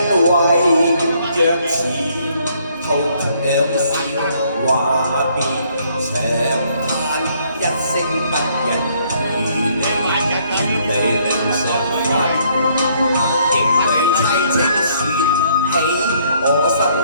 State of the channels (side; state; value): both; inverted; correlation -0.66